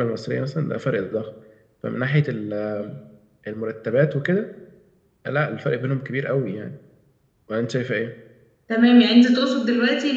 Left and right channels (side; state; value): both; identical; correlation 1.00